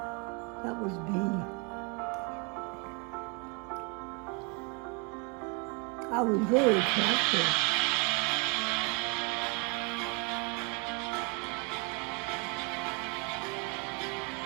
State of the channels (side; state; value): left; quieter; 32.5 dB